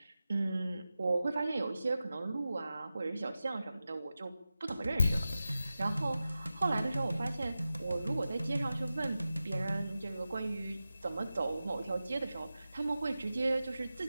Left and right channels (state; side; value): inverted; both; correlation -0.94